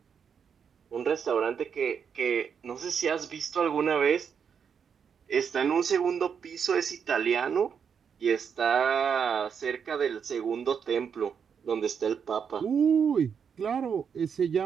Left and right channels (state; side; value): quieter; left; 7.0 dB